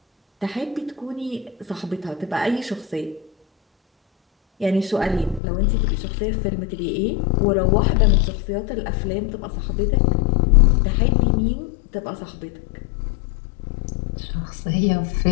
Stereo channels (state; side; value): drops out; right; at 5.4 s